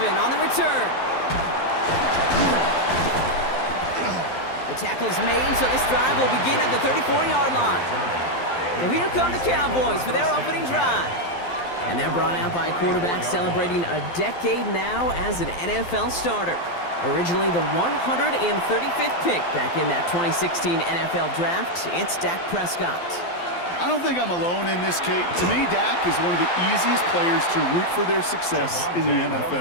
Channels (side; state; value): right; late; 12 ms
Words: on the return. The tackle's made, so this drive will begin at the 34-yard line. So here come the Cowboys for their opening drive. And they're brought out by a quarterback celebrating a decade now as an NFL starter. Originally the 135th pick back in that 2016 NFL Draft, it's Dak Prescott. I don't think I'm alone in this, Kate. To me, Dak is one of the easiest players to root for their success in the